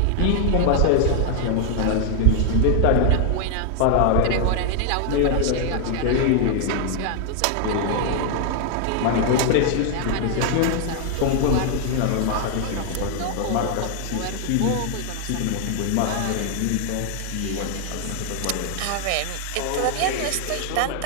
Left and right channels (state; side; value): different; both; correlation 0.00